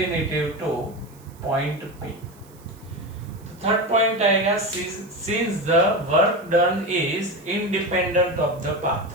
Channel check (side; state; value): right; noise; hiss, 27 dB below the sound